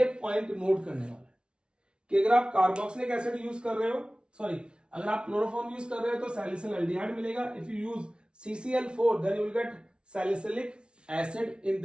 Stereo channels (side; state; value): left; late; 0.057 ms